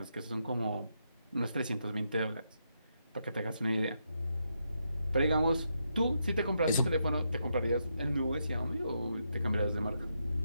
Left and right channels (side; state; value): both; inverted; correlation -0.81